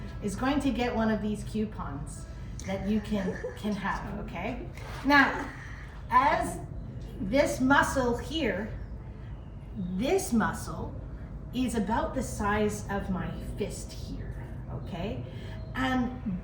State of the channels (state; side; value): identical; both; correlation 1.00